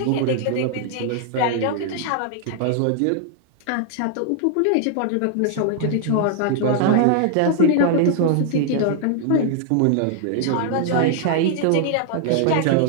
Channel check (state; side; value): different; both; correlation 0.00